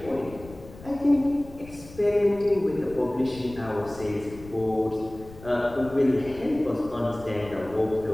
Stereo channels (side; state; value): left; noise; rumble, 18 dB below the sound